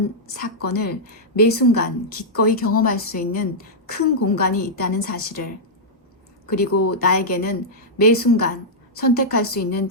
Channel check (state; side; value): normal; both; correlation -0.09